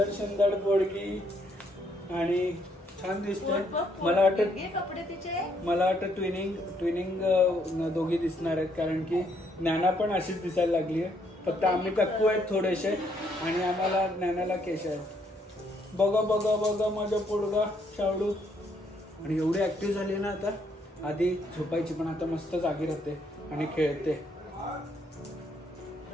सुंदर पोडगी. आणि छान दिसतोय. मला वाटतं ट्विनिंग दोघी दिसणार आहेत, कारण की ज्ञाना पण अशीच दिसायला लागली आहे. फक्त आम्ही कक्कू आहेत थोडेसे आणि आम्हाला ज्ञानाला केश आहेत. बघा बघा बघा माझा पोडगा शावडू. आणि एवढी ऍक्टिव्ह झाली ना आता. आधी झोपायची पण आता मस्त जागी राहते आणि खेळते.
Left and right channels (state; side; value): normal; both; correlation 0.71